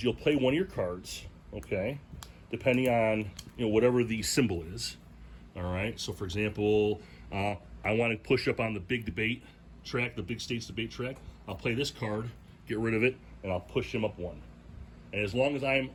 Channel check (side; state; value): both; identical; correlation 1.00